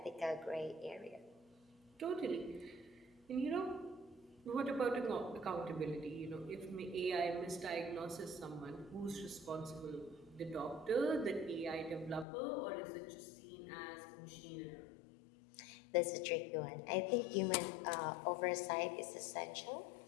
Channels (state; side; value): drops out; right; at 12.2 s